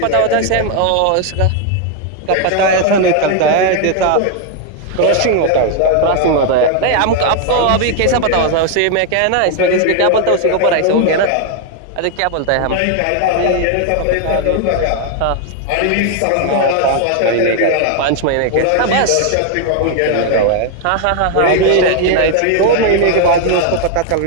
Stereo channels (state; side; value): different; both; correlation 0.00